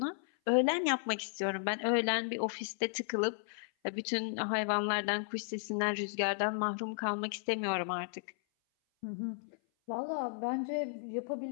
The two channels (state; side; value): silent; right; 55 dB below the other